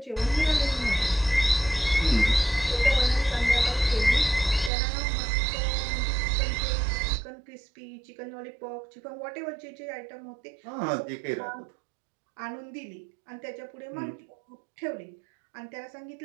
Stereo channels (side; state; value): left; drops out; at 4.7 s